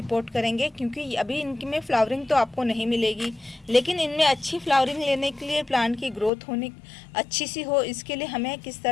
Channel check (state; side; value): drops out; right; at 6.3 s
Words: करेंगे, क्योंकि अभी इनमें फ्लावरिंग तो आपको नहीं मिलेगी, लेकिन इनमें अच्छी फ्लावरिंग लेने के लिए, प्लांट की ग्रोथ होने अच्छी सी हो, इसके लिए हमें किस